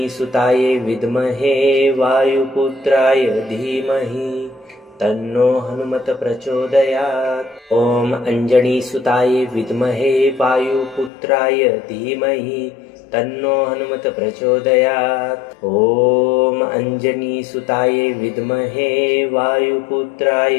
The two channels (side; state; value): right; drops out; at 11.1 s